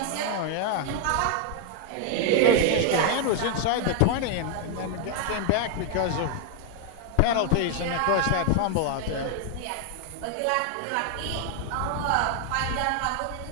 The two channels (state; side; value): different; both; correlation 0.00